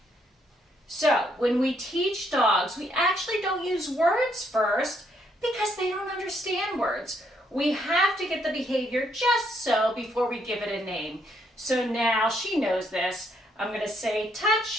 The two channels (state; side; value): normal; both; correlation 0.72